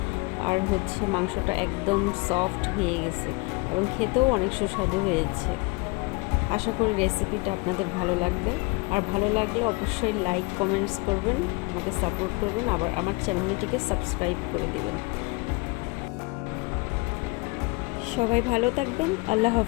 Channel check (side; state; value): right; quieter; 27.1 dB